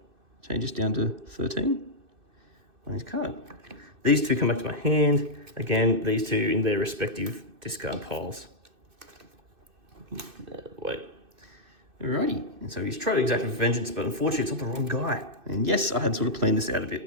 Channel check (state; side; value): late; left; 2.6 ms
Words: changes down to 13 on his card. These 2 come back to my hand. Again, these 2 in their respective discard piles. Wait. Alrighty. And so he's tried to exact vengeance, but unfortunately it's not the wrong guy. And yes, I had sort of planned this out a